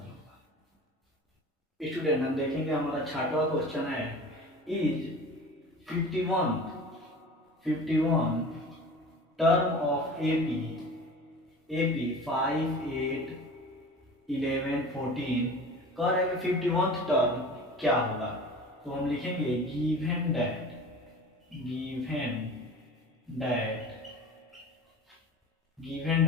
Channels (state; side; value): normal; both; correlation 0.38